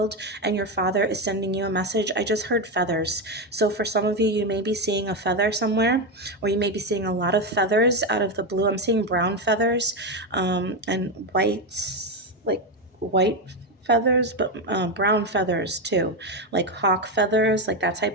and your father is sending you a message. I just heard feathers. So for some of you, you may be seeing a feather somewhere, or you may be seeing a lot of feathers out of the blue. I'm seeing brown feathers and white feathers, but brown feathers too, like hawk feathers, like that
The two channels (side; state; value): both; normal; correlation 0.11